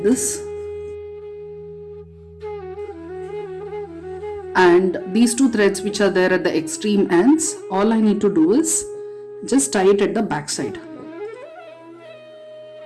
this. And these two threads which are there at the extreme ends, all I need to do is just tie it at the back side.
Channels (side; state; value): both; identical; correlation 1.00